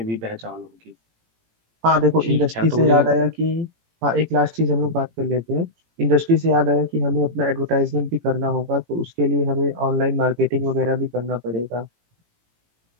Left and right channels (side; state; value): left; late; 18 ms